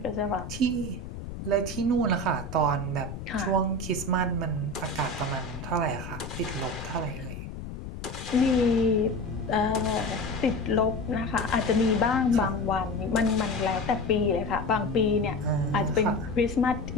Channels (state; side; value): noise; left; rumble, 10 dB below the sound